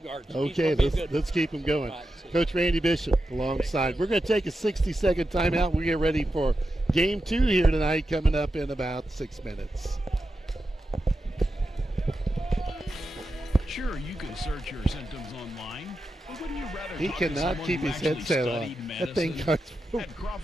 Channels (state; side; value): normal; both; correlation 0.89